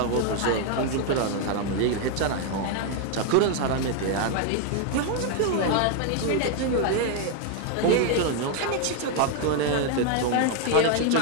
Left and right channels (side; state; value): both; different; correlation 0.01